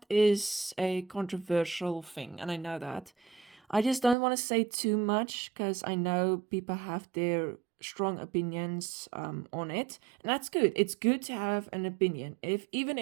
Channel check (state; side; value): drops out; left; at 4.2 s